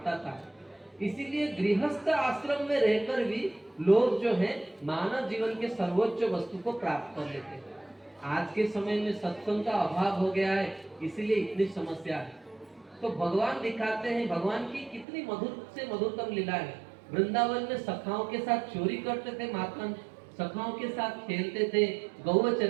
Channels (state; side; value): drops out; left; at 15.1 s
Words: था। इसीलिए गृहस्थ आश्रम में रहकर भी लोग जो है मानव जीवन के सर्वोच्च वस्तु को प्राप्त कर लेते हैं। आज के समय में सत्संग का अभाव हो गया है, इसीलिए इतनी समस्या है। तो भगवान दिखाते हैं भगवान की कितनी मधुर से मधुरतम लीला है। वृंदावन में सखाओं के साथ चोरी करते थे माखन, सखाओं के साथ खेलते थे, गौ